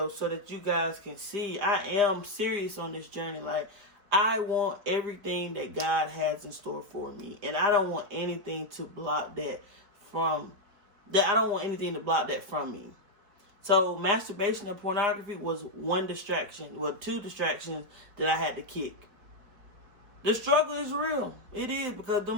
so that you guys can see I am serious on this journey. Like, I want everything that God has in store for me. And I don't want anything to block that from, I don't want anything to block that from me. So masturbation and pornography was one distraction, well, two distractions that I had to kick. The struggle is real. It is, because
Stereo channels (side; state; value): left; late; 4.7 ms